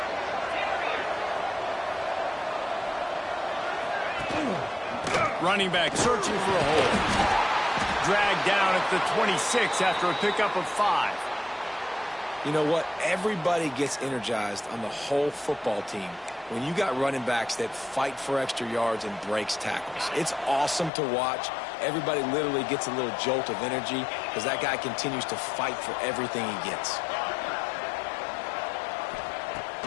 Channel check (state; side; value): drops out; right; at 20.9 s